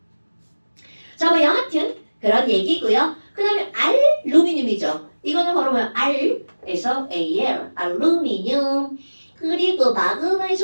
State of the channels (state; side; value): inverted; both; correlation -1.00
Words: 자, 뭐 여하튼 그런 얘기고요. 그 다음에 알루미늄이죠. 이거는 바로 뭐야? R에서 AL, 알루미늄. 그리고